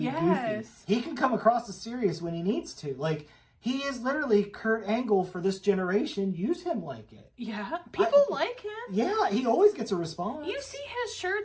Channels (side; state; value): both; identical; correlation 1.00